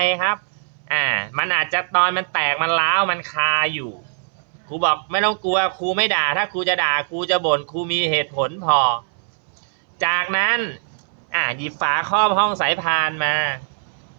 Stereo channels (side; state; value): left; silent; 63 dB below the other